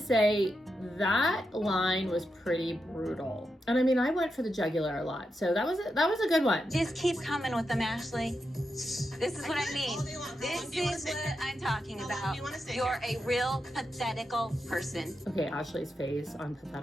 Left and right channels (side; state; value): both; normal; correlation 0.86